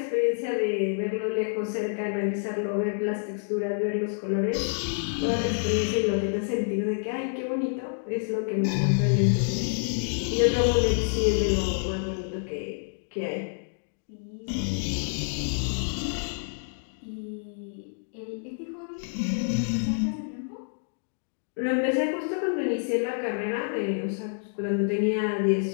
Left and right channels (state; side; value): silent; right; digital silence